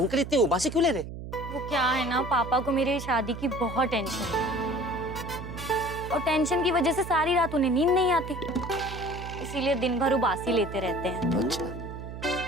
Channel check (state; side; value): noise; right; hum, 10 dB below the sound